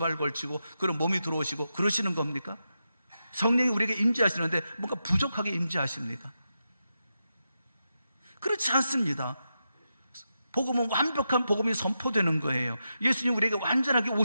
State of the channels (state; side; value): inverted; both; correlation -0.88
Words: 걸치고 그런 몸이 들어오시고 그러시는 겁니까? 성령이 우리에게 임재하시는데 뭔가 부족하게 임재하십니까? 그렇지 않습니다. 복음은 완벽한 복음이 선포되는 거예요. 예수님 우리에게 완전하게